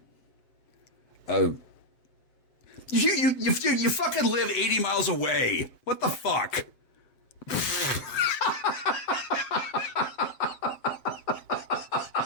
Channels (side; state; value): right; late; 7.5 ms